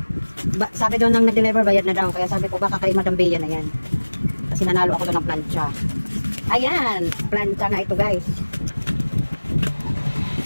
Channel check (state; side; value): inverted; both; correlation -1.00